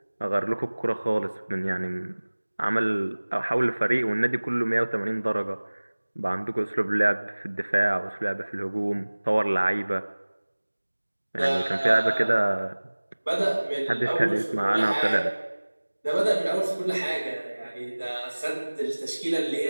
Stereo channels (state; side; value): inverted; both; correlation -1.00